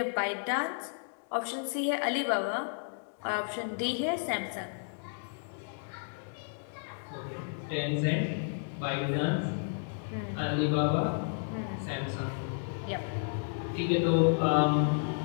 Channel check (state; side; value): silent; right; digital silence